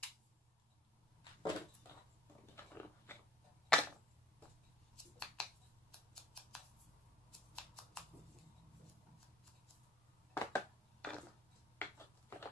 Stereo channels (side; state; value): both; normal; correlation 0.56